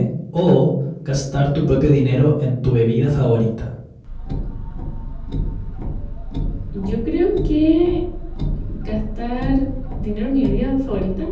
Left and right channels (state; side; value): identical; both; correlation 1.00